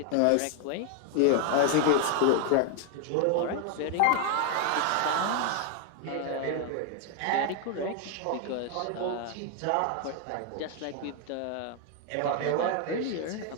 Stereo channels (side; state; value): both; different; correlation 0.00